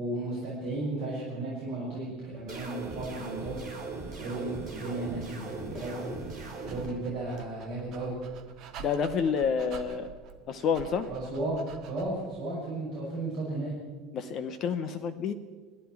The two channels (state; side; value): normal; both; correlation 0.42